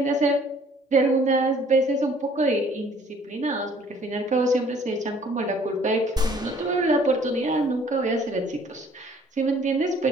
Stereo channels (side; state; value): both; normal; correlation 0.58